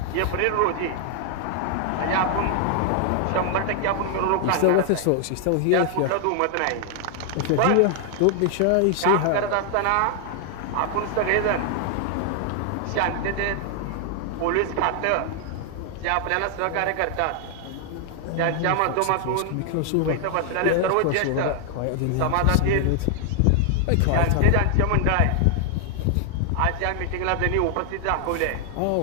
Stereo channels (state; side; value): different; both; correlation 0.00